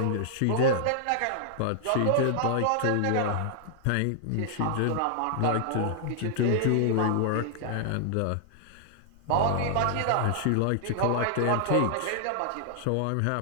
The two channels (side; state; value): both; different; correlation 0.00